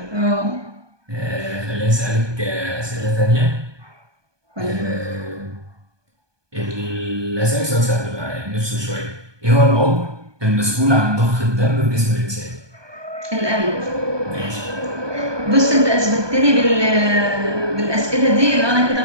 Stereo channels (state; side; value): late; left; 1.2 ms